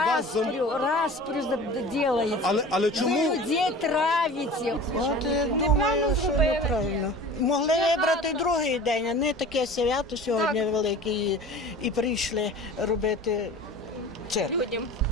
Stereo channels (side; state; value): both; normal; correlation 0.39